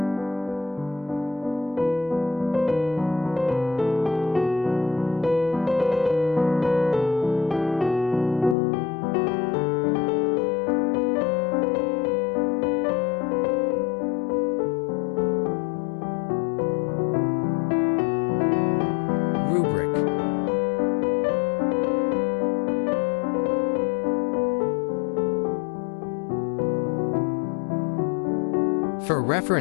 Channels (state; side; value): drops out; right; at 8.6 s